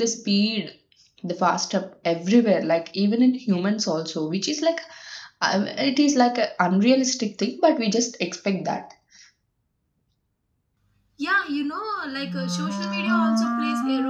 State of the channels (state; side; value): identical; both; correlation 1.00